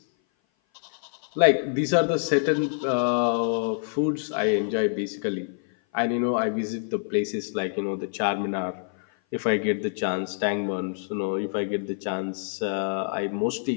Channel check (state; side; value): silent; right; 56 dB below the other